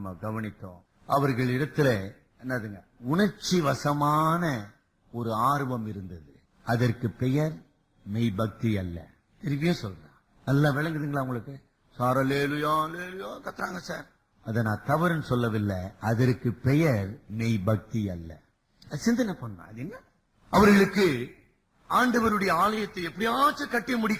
கவனித்தோம். அவர்கள் இடத்துல என்னதுங்க, உணர்ச்சி வசமான ஒரு ஆர்வம் இருந்தது. அதற்கு பெயர் மெய் பக்தி அல்ல. திருப்பியும் சொல்றேன், நல்லா விளங்குதுங்களா உங்களுக்கு? சாரலேலுயா லேலுயா கத்துறாங்க சார். அதை நான் தவறுன்னு சொல்லவில்லை. அதற்கு பெயர் மெய் பக்தி அல்ல. சிந்தனை பண்ண அது என்ன? அவர்களுக்கு ஆண்டவருடைய ஆலயத்தை எப்படியாச்சும் கட்டி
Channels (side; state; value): both; identical; correlation 1.00